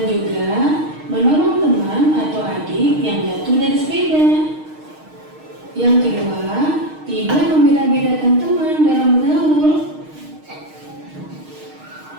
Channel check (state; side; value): late; left; 6.5 ms